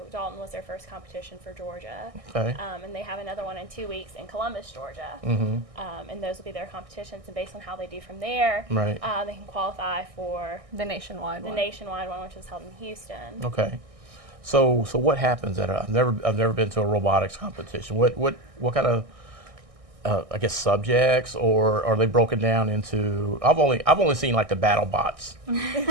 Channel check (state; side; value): late; left; 1.6 ms